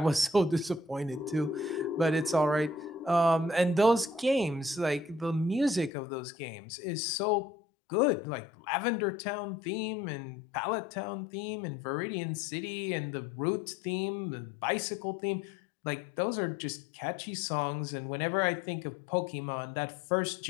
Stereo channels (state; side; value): drops out; right; at 5.9 s